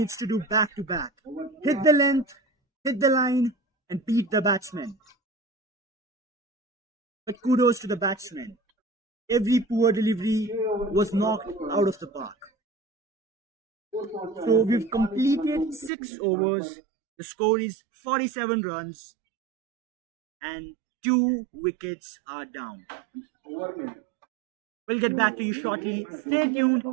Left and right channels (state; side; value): drops out; left; at 15.9 s